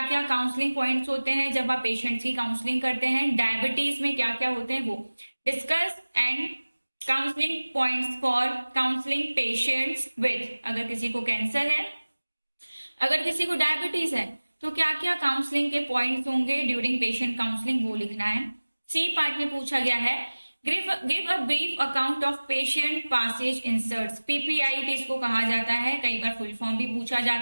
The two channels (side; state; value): both; inverted; correlation -1.00